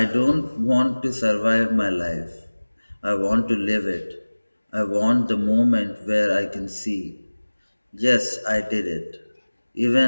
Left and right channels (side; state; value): both; inverted; correlation -1.00